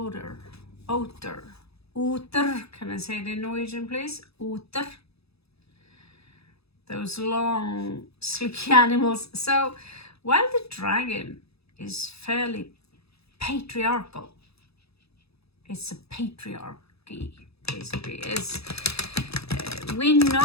Otter. Can I say it in Norwegian, please? Otter. Those long, sleepy animals. So, while the dragon is fairly patriarchal, it's a patriarchy, basically. We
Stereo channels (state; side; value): late; right; 0.78 ms